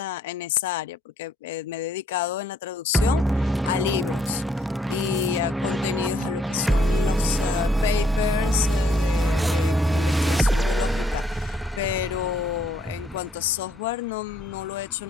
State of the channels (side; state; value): both; normal; correlation 0.67